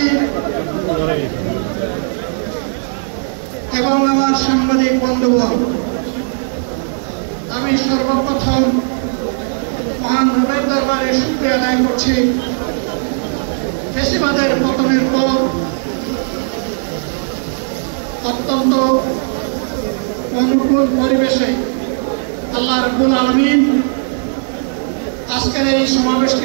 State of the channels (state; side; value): silent; left; digital silence